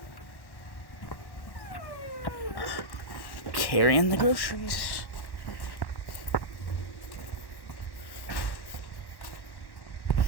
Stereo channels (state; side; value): late; right; 1.1 ms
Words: Carrying the groceries.